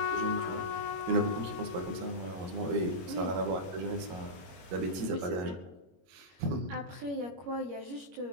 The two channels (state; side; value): late; left; 22 ms